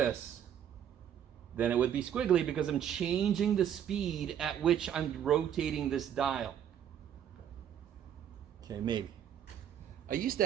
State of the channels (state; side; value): quieter; left; 9.6 dB